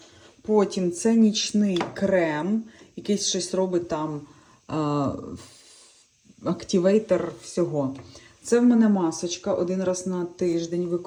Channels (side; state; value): both; identical; correlation 1.00